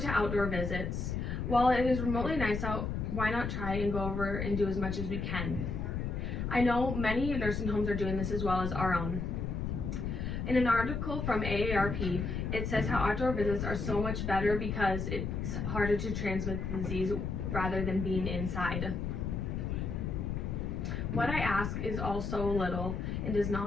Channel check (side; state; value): left; noise; rumble, 2 dB below the sound